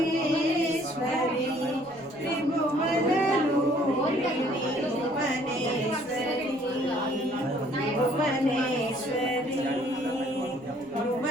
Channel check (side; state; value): left; noise; rumble, 29 dB below the sound